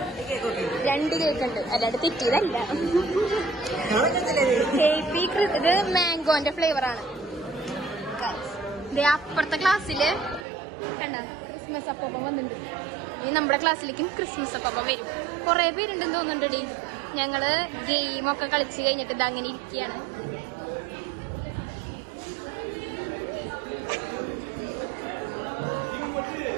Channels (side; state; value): left; drops out; at 10.5 s